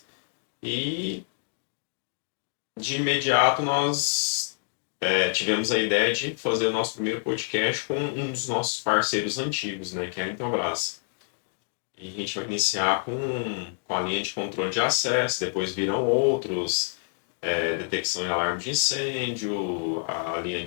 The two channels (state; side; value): silent; right; digital silence